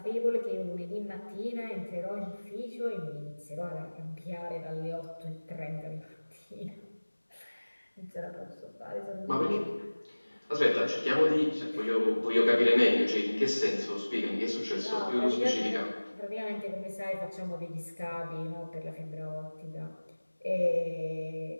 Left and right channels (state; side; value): inverted; both; correlation -1.00